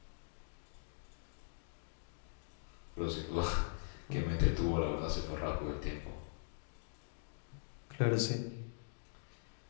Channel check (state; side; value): silent; right; digital silence